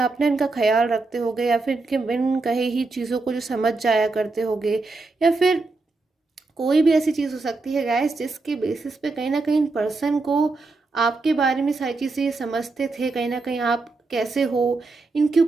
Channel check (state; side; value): quieter; left; 3.6 dB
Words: इनका ख्याल रखते होगे, या फिर इनके बिन कहे ही चीज़ों को जो समझ जाया करते होगे, या फिर कोई भी ऐसी चीज़ हो सकती है गाइस जिसके बेसिस पे कहीं ना कहीं पर्सन को आपके बारे में सारी चीज़ें ये समझते थे। कहीं ना कहीं आप कैसे हो, इनके